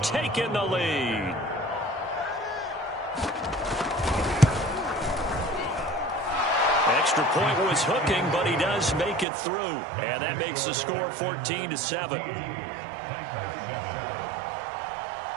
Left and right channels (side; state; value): left; drops out; at 9.2 s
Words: taken the lead. Extra point was hooking, but he does make it through. And that makes the score 14-7.